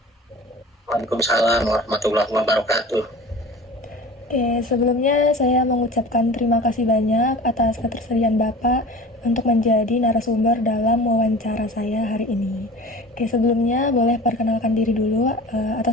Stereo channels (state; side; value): normal; both; correlation 0.38